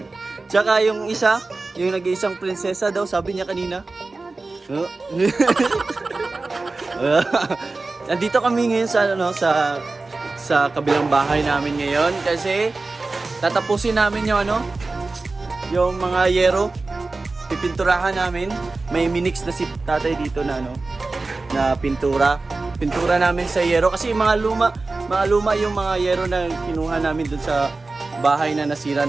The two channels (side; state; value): left; quieter; 3.5 dB